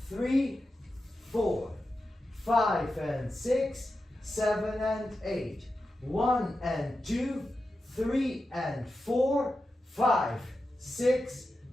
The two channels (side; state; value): both; normal; correlation 0.91